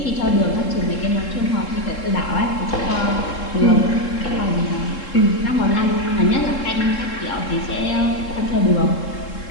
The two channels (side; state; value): right; late; 3.7 ms